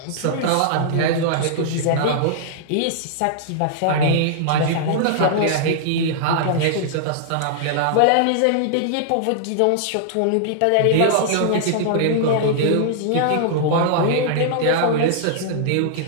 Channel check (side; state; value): both; different; correlation -0.01